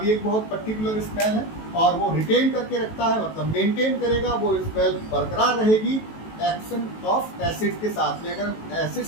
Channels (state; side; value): late; right; 19 ms